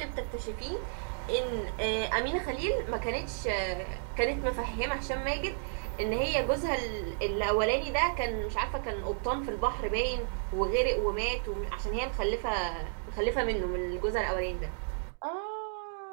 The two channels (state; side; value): silent; left; digital silence